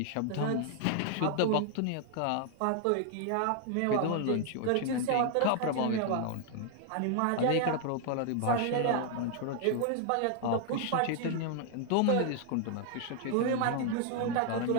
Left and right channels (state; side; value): different; both; correlation 0.00